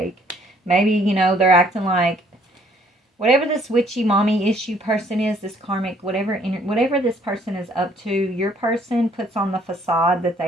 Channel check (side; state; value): both; normal; correlation 0.62